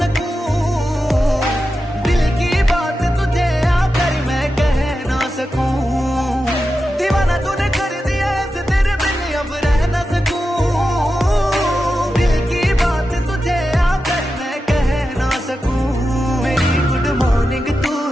दिल की बात तुझे आकर मैं कह ना सकूं। दीवाना तूने कर दिया ऐसे तेरे बिन अब रह ना सकूं, दिल की बात तुझे आकर मैं कह ना सकूं। मेरी गुड मॉर्निंग तू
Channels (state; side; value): normal; both; correlation 0.90